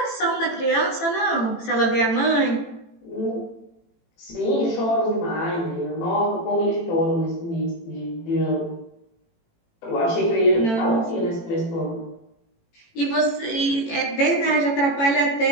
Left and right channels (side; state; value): right; late; 18 ms